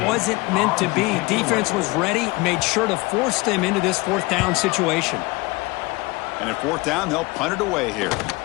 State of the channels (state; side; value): quieter; right; 23.3 dB